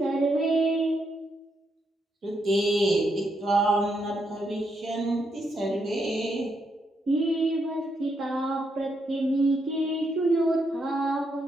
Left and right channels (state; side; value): normal; both; correlation 0.79